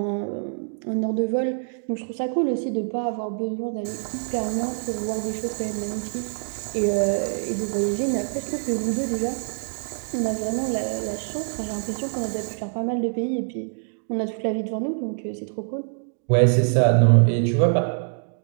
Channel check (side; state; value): left; silent; digital silence